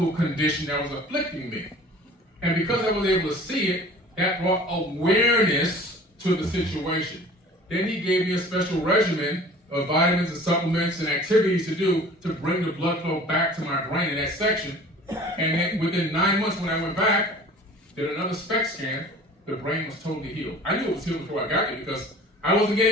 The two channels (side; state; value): both; normal; correlation 0.46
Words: condition that was afflicting me. And because I was able to see it, that brought awareness to the situation. Then he gave me a special regimen of vitamins and supplements and activities to do to bring the blood flow back to my brain in that section. And then within 9 months when I went back, did another SPECT scan, the brain was totally healed. I knew it was healed before I got there because I wasn't